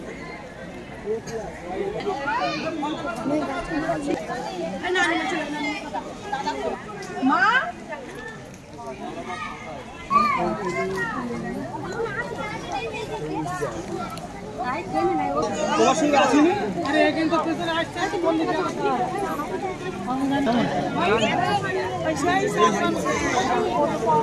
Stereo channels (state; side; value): identical; both; correlation 1.00